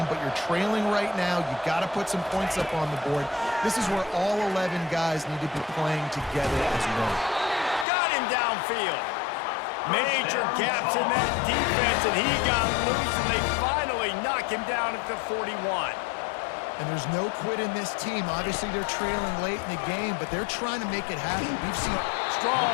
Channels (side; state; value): right; drops out; at 7.9 s